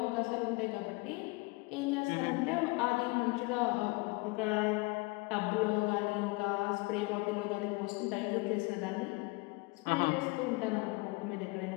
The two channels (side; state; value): right; quieter; 26.2 dB